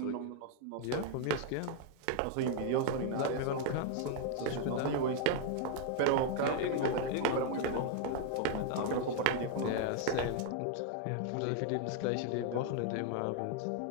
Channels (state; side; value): different; both; correlation 0.00